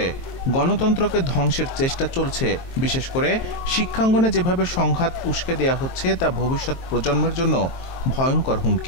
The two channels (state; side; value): late; right; 23 ms